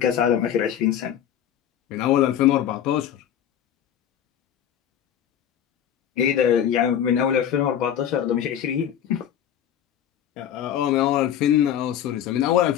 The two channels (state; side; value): quieter; right; 9.9 dB